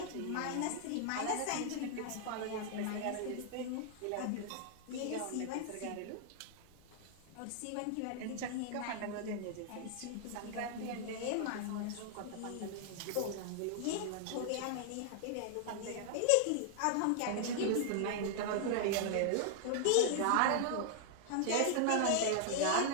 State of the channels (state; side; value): different; both; correlation -0.01